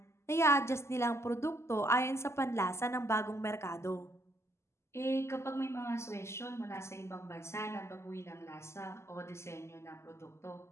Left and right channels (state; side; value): late; right; 0.13 ms